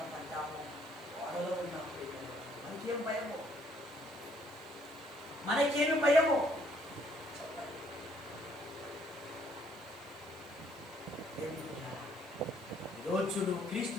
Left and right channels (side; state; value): right; noise; hiss, 24 dB below the sound